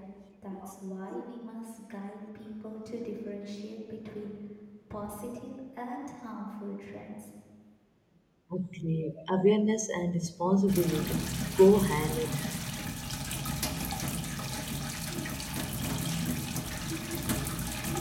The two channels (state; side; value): identical; both; correlation 1.00